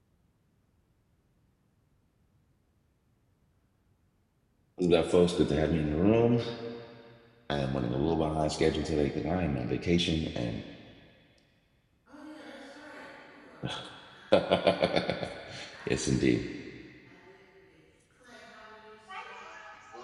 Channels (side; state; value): both; identical; correlation 1.00